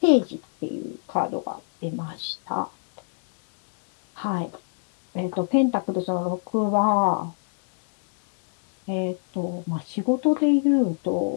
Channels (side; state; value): right; silent; digital silence